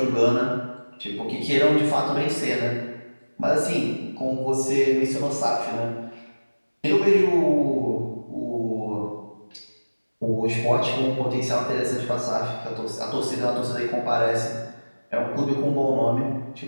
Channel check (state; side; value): inverted; both; correlation -1.00